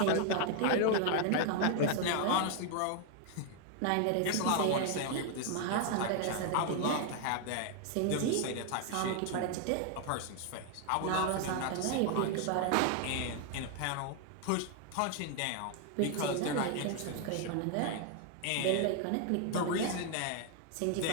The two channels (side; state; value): both; different; correlation 0.00